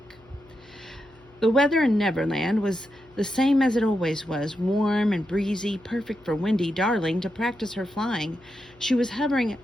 The weather in Neverland was the same as it always was, warm and breezy, perfect for Wendy Darling to practice her flying. She was hovering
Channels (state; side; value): noise; left; hum, 28 dB below the sound